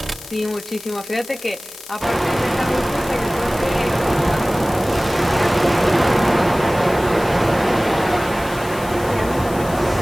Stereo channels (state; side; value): noise; left; hiss, 16 dB below the sound